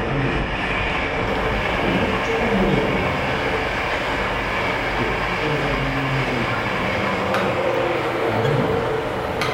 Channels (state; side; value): identical; both; correlation 1.00